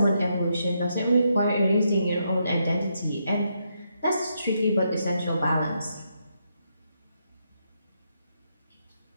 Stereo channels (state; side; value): inverted; both; correlation -0.79